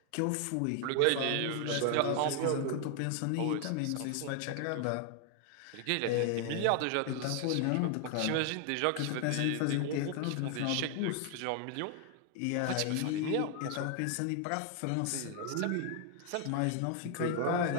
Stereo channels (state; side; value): different; both; correlation 0.00